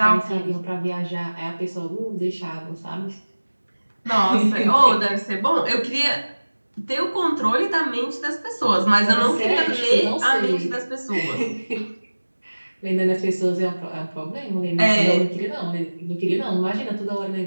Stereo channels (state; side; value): inverted; both; correlation -1.00